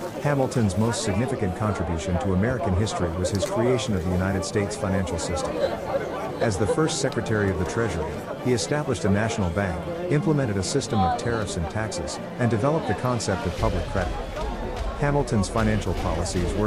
Hamilton's most significant contribution to American history was his creation of the United States financial system. As the first Secretary of the Treasury, he established a national bank, implemented a system of tariffs and taxes, and developed the concept of public credit. Hamilton's financial policies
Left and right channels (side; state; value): both; identical; correlation 1.00